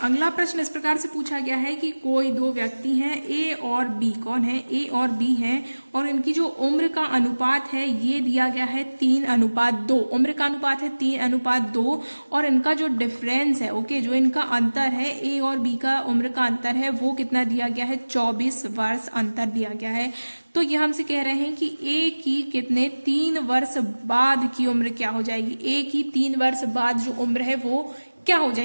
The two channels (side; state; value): both; inverted; correlation -1.00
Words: प्रश्न इस प्रकार से पूछा गया है कि कोई दो व्यक्ति हैं, ए और बी। कौन है? ए और बी हैं, और इनकी जो उम्र का अनुपात है ये दिया गया है 3:2। उम्र का अनुपात है 3:2, और इनका जो डिफरेंस है, ओके, जो इनका अंतर है, ए और बी का उम्र का अंतर है वो कितना दिया गया है? 24 वर्ष अंतर दिया गया है। तो ये हमसे कह रहे हैं कि ए की कितने 3 वर्ष बाद की उम्र क्या हो जाएगी? ए की 3 वर्ष बाद जो उम्र है वो क्या हो